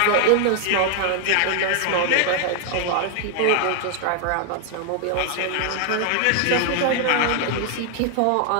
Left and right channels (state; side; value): different; both; correlation 0.00